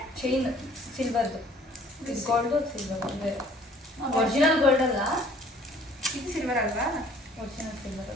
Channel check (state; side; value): normal; both; correlation 0.55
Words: ಚೈನ್ ಸಿಲ್ವರ್ದು, ಇದು ಗೋಲ್ಡು ಸಿಲ್ವರ್ ಅಂದರೆ ಒರಿಜಿನಲ್ ಗೋಲ್ಡ್ ಅಲ್ಲ, ಇದು ಸಿಲ್ವರ್ ಅಲ್ವಾ? ಒರಿಜಿನಲ್ ಸಿಲ್ವರ್